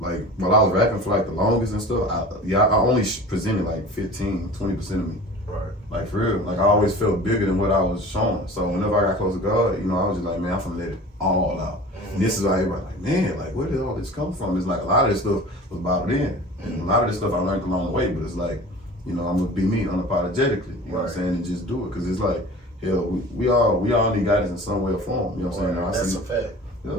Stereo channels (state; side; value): normal; both; correlation 0.40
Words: like while I was rapping for like the longest and stuff, I only presented like 15-20% of me. Right. Like for real, like I always felt bigger than what I was showing. So whenever I got close to God, you know, I was just like, man, I'm finna let it all out. And this is why everybody like, man, like where did all this come from? It's like a lot of this stuff was bottled in, and a lot of this stuff I learned along the way. But it's like, you know, I'm gonna be me unapologetically. You know what I'm saying, and just do it because it's like, hell, we all need guidance in some way or form. You know what I'm saying? That's a fact.